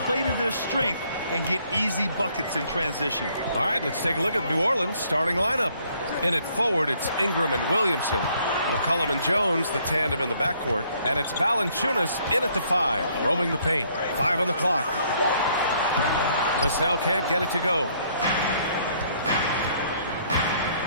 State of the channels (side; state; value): both; inverted; correlation -0.65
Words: play to their strength and get easy buckets in transition. All right, let's take a look at New Orleans' starting lineup. In it forward, it's Ingram and Williamson. McCollum and Jones, the tandem in the backcourt. And it's Valanciunas in at the 5, roaming the paint. 5 on the clock. Vassell can't get it to go.